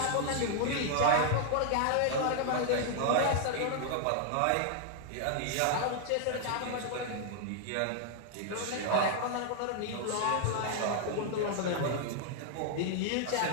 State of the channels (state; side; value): different; both; correlation 0.00